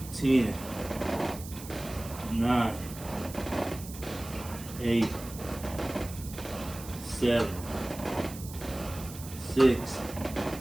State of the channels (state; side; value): noise; right; hiss, 14 dB below the sound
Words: 10, 9, 8, 7, 6,